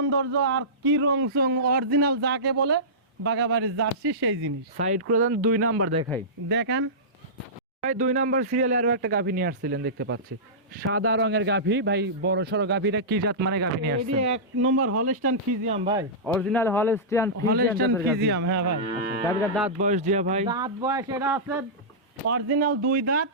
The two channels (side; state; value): both; normal; correlation -0.17